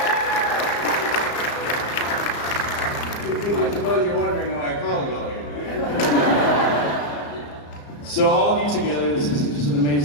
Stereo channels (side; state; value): right; late; 34 ms